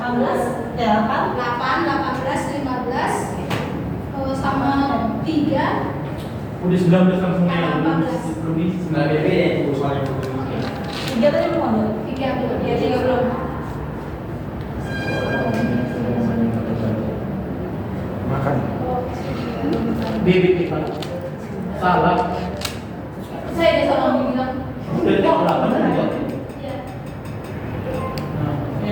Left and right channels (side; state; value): both; identical; correlation 1.00